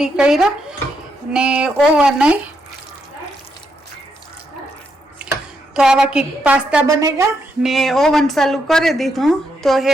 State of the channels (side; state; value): both; normal; correlation 0.79